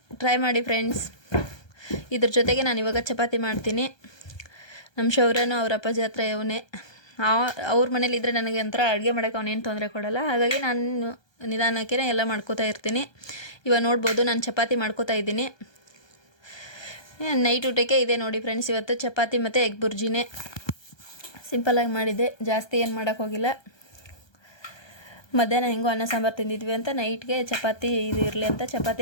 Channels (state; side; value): late; right; 1.2 ms